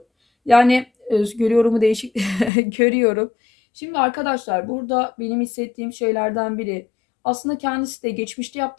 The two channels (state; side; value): drops out; right; at 2.5 s